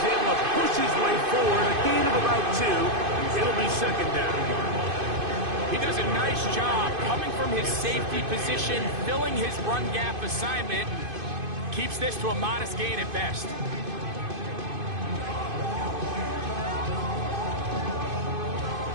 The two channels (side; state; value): left; late; 2.5 ms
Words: able to push his way forward. A gain of about 2. It'll be 2nd down. He does a nice job coming from his safety position, filling his run gap assignment, keeps this to a modest gain at best.